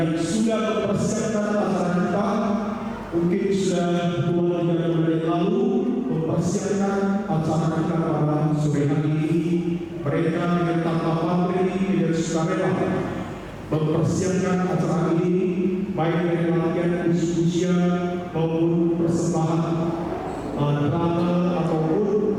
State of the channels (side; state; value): both; identical; correlation 1.00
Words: sudah mempersiapkan acara kita. Mungkin sudah 2-3 bulan yang lalu mempersiapkan acara kita pada sore hari ini. Mereka dengan tanpa pamrih dan sukarela mempersiapkan acara ini, baik dari latihan usia maupun persembahan drama ataupun